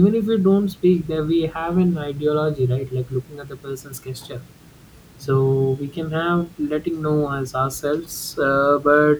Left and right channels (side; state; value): both; identical; correlation 1.00